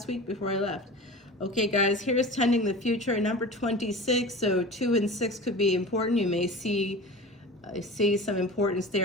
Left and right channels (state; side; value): normal; both; correlation 0.34